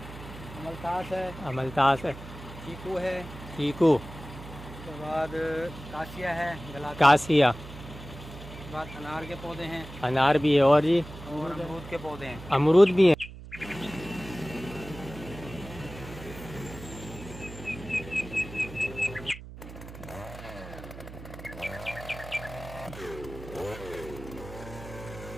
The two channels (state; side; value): noise; right; hum, 14 dB below the sound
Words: अमलतास है, चीकू है, चीकू, उसके बाद कासिया है, कासिया, उसके बाद अनार के पौधे हैं, अनार भी है, और जी और अमरूद के पौधे हैं। अमरूद भी है।